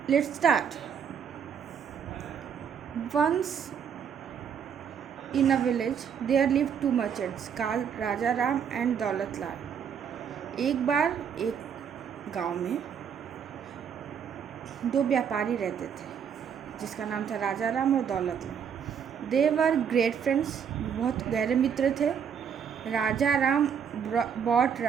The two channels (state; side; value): quieter; left; 7.6 dB